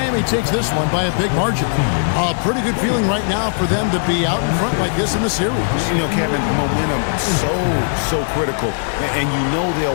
takes this one by a big margin. A pretty good feeling right now for them to be out in front like this in the series. You know, Kevin, momentum so critical. And you know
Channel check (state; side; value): silent; right; digital silence